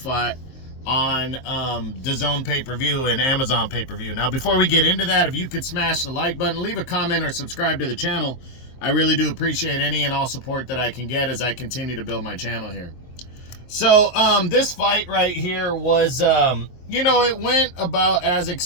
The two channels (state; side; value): late; right; 23 ms